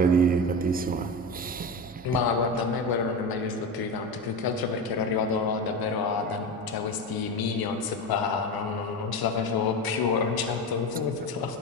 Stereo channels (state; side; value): normal; both; correlation 0.22